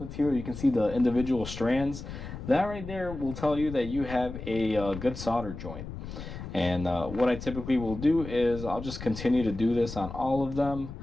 You can see the individual strands. That right there will tell you that you have a good solder joint. And what I typically will do is I'll just continue to do this on all of them.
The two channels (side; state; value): left; noise; rumble, 10 dB below the sound